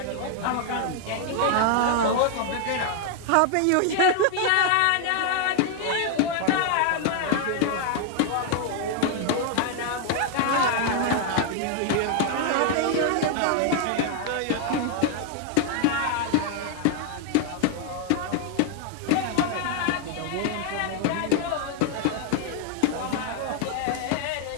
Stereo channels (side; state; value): both; different; correlation 0.00